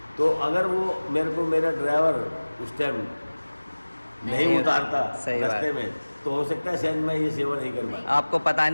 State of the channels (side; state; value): both; inverted; correlation -1.00